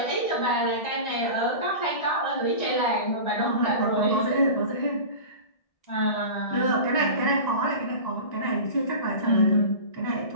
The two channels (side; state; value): right; late; 1.6 ms